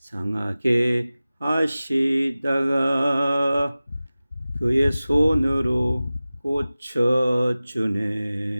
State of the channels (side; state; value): both; inverted; correlation -0.96